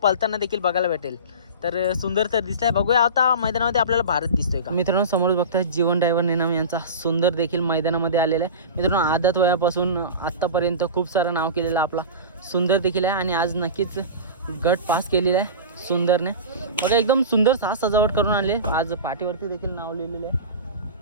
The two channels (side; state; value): both; inverted; correlation -0.30